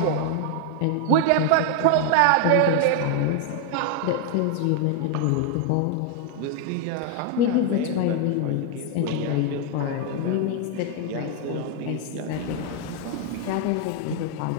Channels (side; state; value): both; different; correlation 0.00